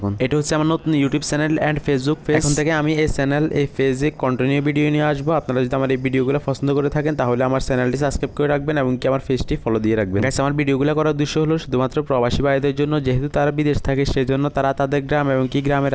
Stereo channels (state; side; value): identical; both; correlation 1.00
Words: এটা হচ্ছে আমার নতুন YouTube channel and Facebook page. এখন থেকে আমি এই চ্যানেল এই পেজে কন্টিনিউ ভিডিও নিয়ে আসবো। আপনারা যদি আমার এই ভিডিওগুলো পছন্দ করে থাকেন তাহলে আমার চ্যানেলটি সাবস্ক্রাইব করে রাখবেন এবং কি আমার পেজটি ফলো দিয়ে রাখবেন। গাইস আমার ভিডিওগুলো করার উদ্দেশ্য হলো শুধুমাত্র প্রবাসী ভাইদের জন্য, যেহেতু তারা বিদেশ থাকে সেজন্য তারা তাদের গ্রাম এবং কি গ্রামের